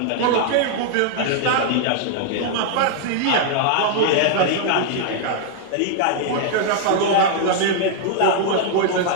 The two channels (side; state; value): both; different; correlation 0.00